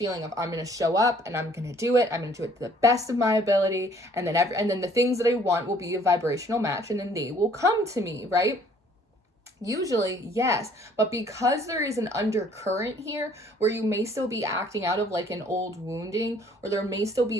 of, I'm going to show up and I'm going to do it. I'm going to do it to the best of my ability. And then the things that I want will be a vibrational match, and then they will come to me, right? Usually, yes, but because there is an undercurrent here where you may still be acting out of like an old wounding, or there may still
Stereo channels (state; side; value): normal; both; correlation 0.59